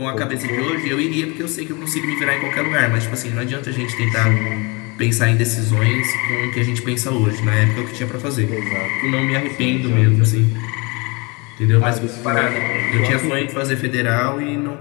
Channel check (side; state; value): right; quieter; 28.3 dB